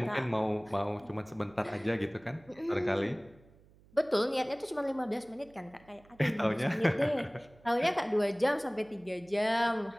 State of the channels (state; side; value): noise; right; hum, 27 dB below the sound